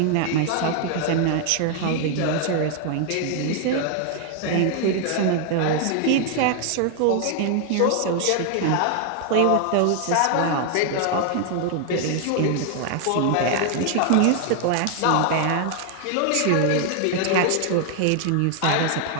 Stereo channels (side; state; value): both; different; correlation 0.00